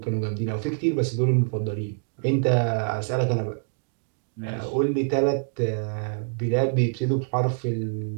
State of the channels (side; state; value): left; silent; digital silence